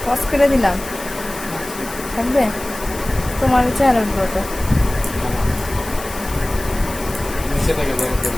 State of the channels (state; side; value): noise; left; hiss, 13 dB below the sound